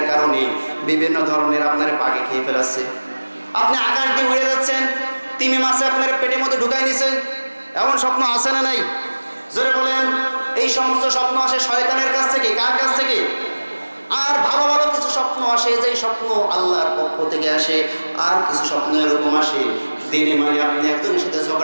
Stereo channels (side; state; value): both; inverted; correlation -1.00